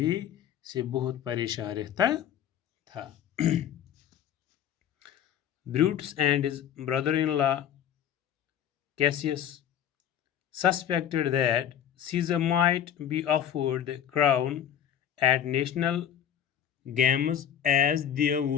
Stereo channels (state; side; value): quieter; right; 9.7 dB